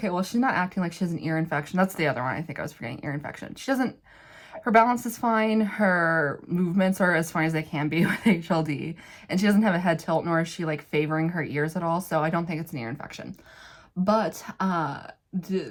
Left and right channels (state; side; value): identical; both; correlation 1.00